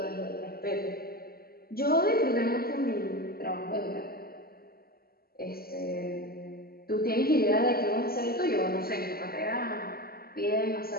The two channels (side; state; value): right; late; 0.44 ms